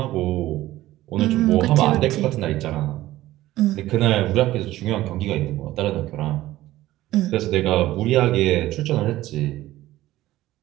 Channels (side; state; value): left; quieter; 15.7 dB